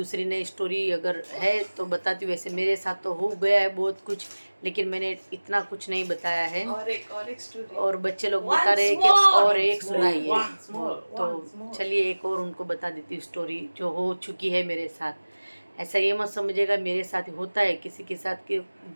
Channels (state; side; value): inverted; both; correlation -1.00